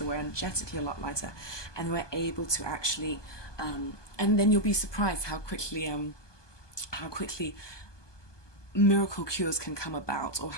we're energetically a lot lighter, and we're able to actually and then you'll be surprised how quickly miracle cures can come about, or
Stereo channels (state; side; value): late; right; 1.2 ms